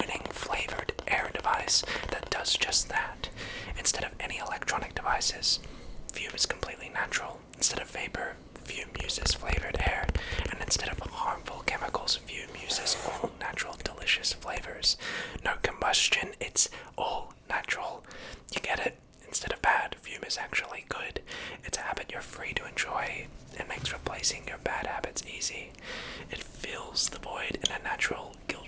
flavored air device that does just that. Instead of any electronic devices, Fume is completely natural. Instead of vapor, Fume uses flavored air, and instead of harmful chemicals, Fume uses all natural, delicious flavors. No combustion, it's all natural. You get it? Instead of bad, Fume is actually good. It's a habit you're free to enjoy. It makes replacing your bad habits easy. It fills the void in a natural,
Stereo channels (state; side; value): identical; both; correlation 1.00